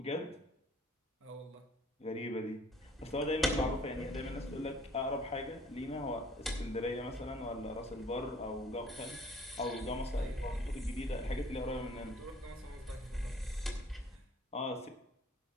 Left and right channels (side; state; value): both; normal; correlation 0.56